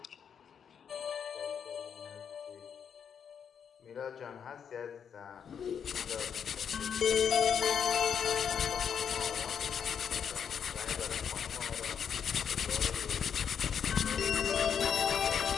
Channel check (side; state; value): right; quieter; 7.6 dB